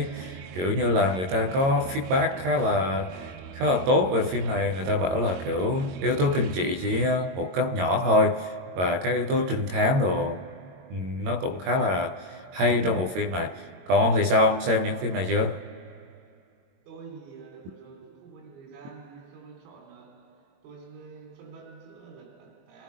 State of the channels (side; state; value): left; late; 22 ms